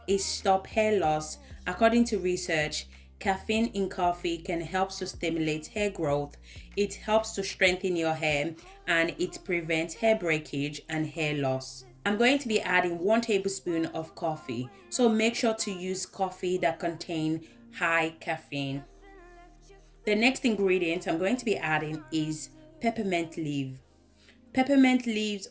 It stops hair loss. According to research, caffeine in coffee can help to stimulate hair growth. It helps to strengthen your hair and it prevents hair breakage and hair loss. I'm going to be adding 1 tablespoon of coffee. So make sure to use coffee that contains high caffeine. The next ingredient I'm going to be adding is peppermint leaf. Peppermint leaves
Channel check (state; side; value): identical; both; correlation 1.00